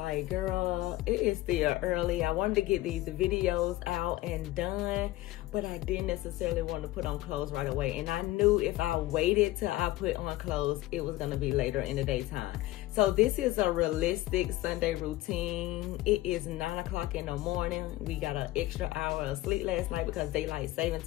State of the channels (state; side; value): quieter; right; 17.3 dB